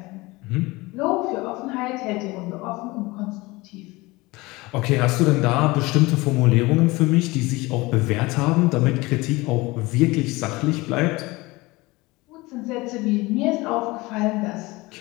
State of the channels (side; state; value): right; quieter; 22.2 dB